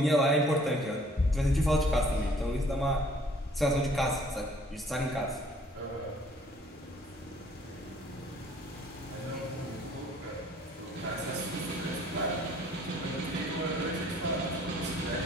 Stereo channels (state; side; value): normal; both; correlation 0.57